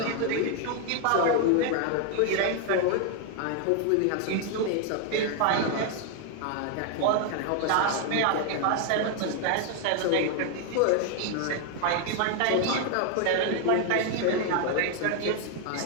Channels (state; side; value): different; both; correlation 0.00